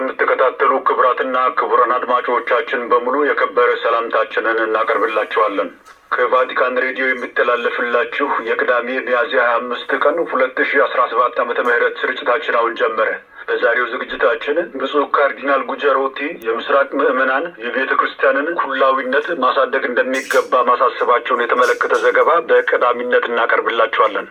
ክቡራትና ክቡራን አድማጮቻችን በሙሉ የከበረ ሰላምታችንን እናቀርብላችኋለን። ከቫቲካን ሬዲዮ የሚተላለፍላችሁ የቅዳሜ ሚያዝያ 25 ቀን 2017 ዓመተ ምህረት ስርጭታችን አሁን ጀመረ። በዛሬው ዝግጅታችን ብፁዕ ካርዲናል ጉጀሮቲ የምስራቅ ምዕመናን የቤተ ክርስቲያንን ኩላዊነት ማሳደግ እንደሚገባ ማሳሰባቸውን የተመለከተ ዘገባ በቀዳሚነት እናቀርብላችኋለን።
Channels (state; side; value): identical; both; correlation 1.00